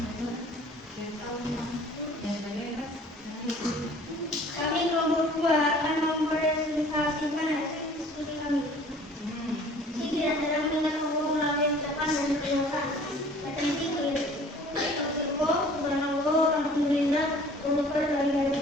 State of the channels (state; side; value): normal; both; correlation 0.50